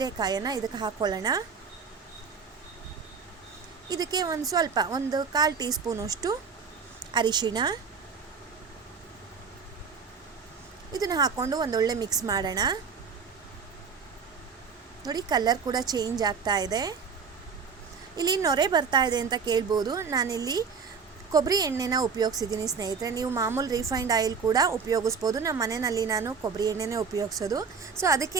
ಇದಕ್ಕೆ ಹಾಕ್ಕೊಳ್ಳೋಣ. ಇದಕ್ಕೆ ಒಂದು 1/4 ಟೀ ಸ್ಪೂನಷ್ಟು ಅರಿಶಿಣ, ಇದನ್ನು ಹಾಕ್ಕೊಂಡು ಒಂದೊಳ್ಳೆ ಮಿಕ್ಸ್ ಮಾಡೋಣ. ನೋಡಿ ಕಲರ್ ಕೂಡ ಚೇಂಜ್ ಆಗ್ತಾ ಇದೆ. ಇಲ್ಲಿ ನೊರೆ ಬರ್ತಾ ಇದೆ ಅಂತ ಕೇಳ್ಬೋದು. ನಾನಿಲ್ಲಿ ಕೊಬ್ಬರಿ ಎಣ್ಣೆನ ಉಪಯೋಗಿಸಿದ್ದೀನಿ ಸ್ನೇಹಿತರೆ. ನೀವು ಮಾಮೂಲು ರಿಫೈನ್ಡ್ ಆಯಿಲ್ ಕೂಡ ಉಪಯೋಗಿಸ್ಬೋದು. ನಮ್ಮ ಮನೆಯಲ್ಲಿ ನಾನು ಕೊಬ್ಬರಿ ಎಣ್ಣೆನೇ ಉಪಯೋಗಿಸೋದು. ಸೊ ಅದಕ್ಕೆ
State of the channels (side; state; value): left; quieter; 5.8 dB